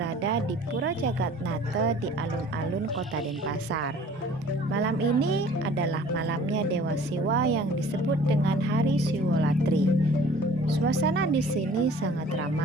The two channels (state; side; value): normal; both; correlation 0.50